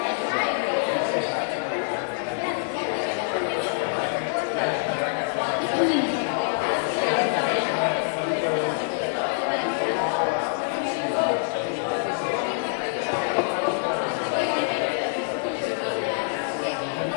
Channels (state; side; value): silent; right; digital silence